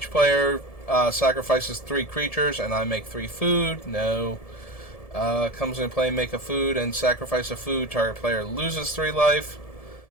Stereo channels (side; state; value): right; late; 1.7 ms